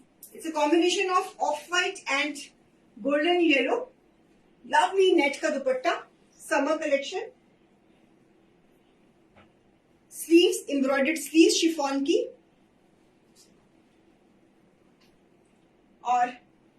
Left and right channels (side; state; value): both; identical; correlation 1.00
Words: It's a combination of off-white and golden yellow. Lovely net का दुपट्टा. Summer collection. Sleeves, embroidered sleeves chiffon की. और